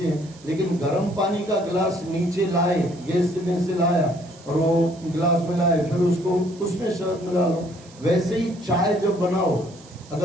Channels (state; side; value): noise; right; hiss, 23 dB below the sound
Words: हैं, लेकिन गर्म पानी का गिलास नीचे लाए, गैस में से लाया और वो गिलास में लाए, फिर उसको उसमें शहद मिला लो। वैसे ही चाय जब बनाओ,